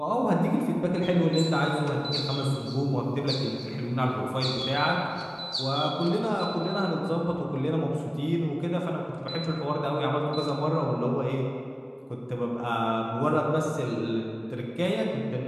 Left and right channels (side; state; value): both; identical; correlation 1.00